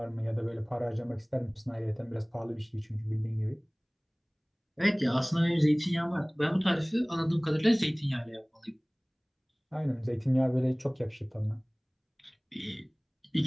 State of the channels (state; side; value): identical; both; correlation 1.00